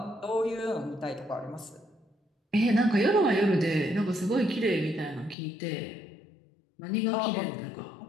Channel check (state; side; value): drops out; right; at 5.4 s